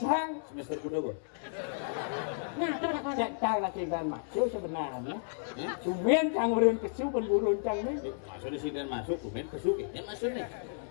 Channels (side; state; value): right; silent; 56 dB below the other